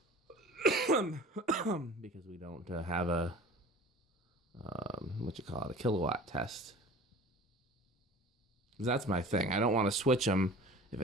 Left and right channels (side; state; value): both; normal; correlation 0.42